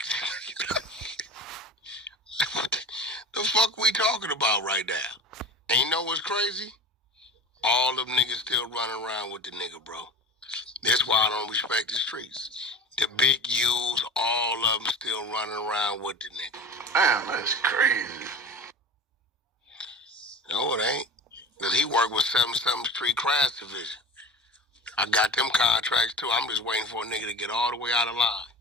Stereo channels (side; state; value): both; normal; correlation 0.34